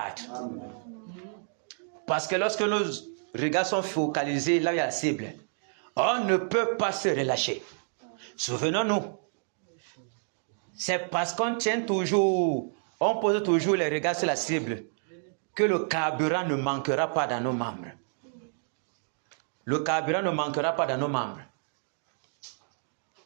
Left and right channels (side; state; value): left; silent; digital silence